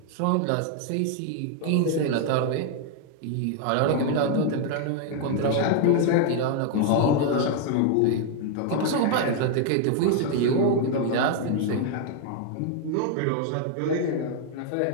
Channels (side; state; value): both; different; correlation 0.00